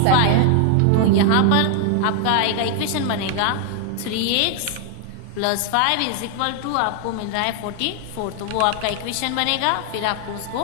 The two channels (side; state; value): both; different; correlation 0.00